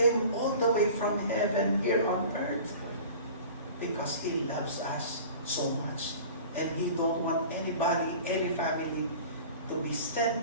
all the way from heaven here on earth because He loves us so much. And He don't want anybody, any family to be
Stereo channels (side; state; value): both; inverted; correlation -0.41